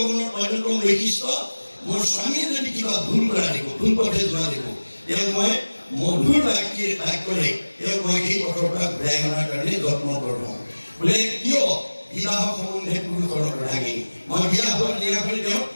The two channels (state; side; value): inverted; both; correlation -1.00